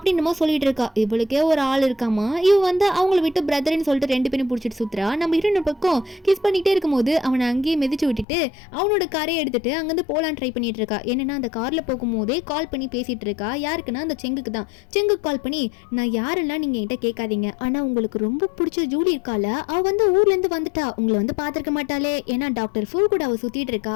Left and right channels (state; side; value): drops out; right; at 8.2 s